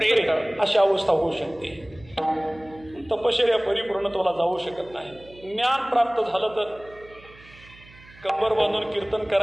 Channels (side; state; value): right; noise; hum, 23 dB below the sound